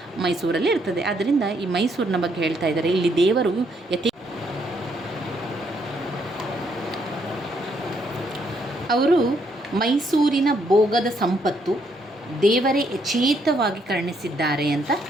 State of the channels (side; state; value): both; normal; correlation 0.72